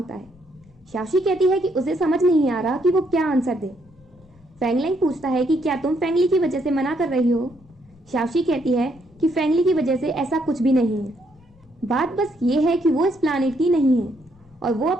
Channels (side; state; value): left; noise; rumble, 28 dB below the sound